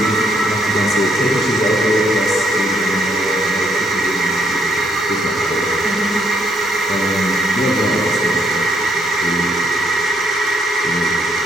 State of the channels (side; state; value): both; normal; correlation 0.72